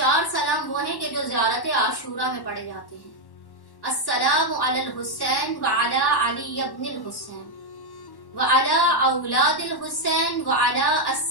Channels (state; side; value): late; right; 1.1 ms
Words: सलाम वो हैं कि जो ज़ियारत आशूरा में पढ़े जाते हैं। अस्सलामु अलल हुसैन व अला अली इब्निल हुसैन व अला औलादिल हुसैन व अला